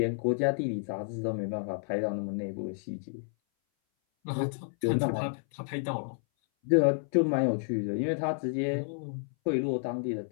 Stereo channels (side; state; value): right; silent; 57 dB below the other